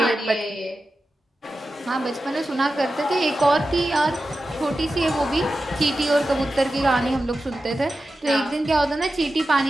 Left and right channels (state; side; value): normal; both; correlation 0.92